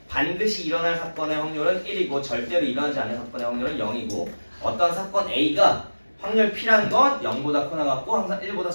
반드시 일어날 사건의 확률은 1이고 절대로 일어나지 않는 사건의 확률은 0이고 어떤 사건 A가 확률 P라는 건 0보다 크거나 같고 항상 1보다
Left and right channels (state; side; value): inverted; both; correlation -1.00